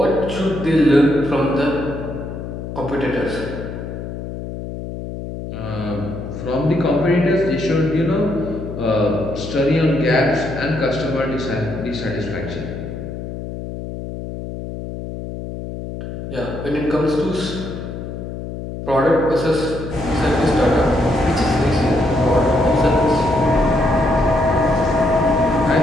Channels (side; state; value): left; noise; hum, 8 dB below the sound